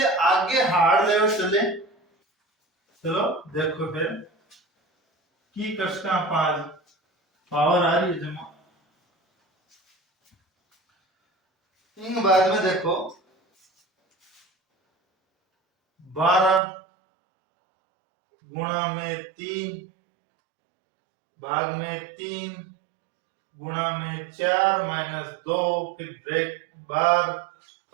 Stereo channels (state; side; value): drops out; left; at 16.6 s